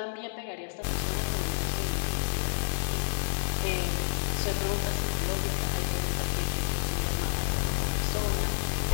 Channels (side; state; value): right; silent; 58 dB below the other